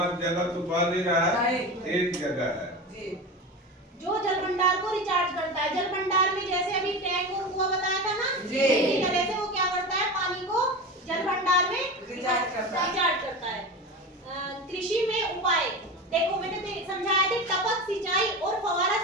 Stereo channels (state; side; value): normal; both; correlation 0.26